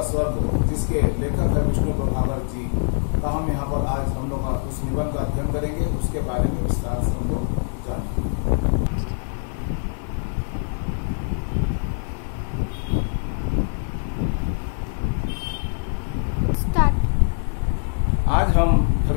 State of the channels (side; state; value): right; silent; 56 dB below the other